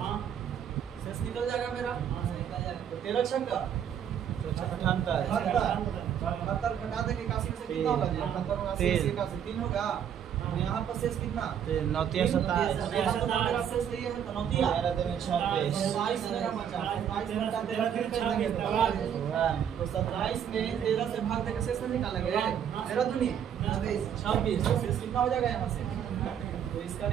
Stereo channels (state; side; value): quieter; left; 8.9 dB